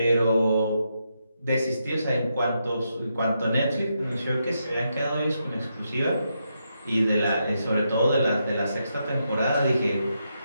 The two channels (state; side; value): inverted; both; correlation -0.82